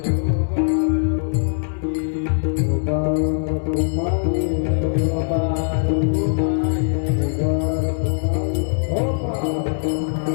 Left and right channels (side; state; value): right; silent; digital silence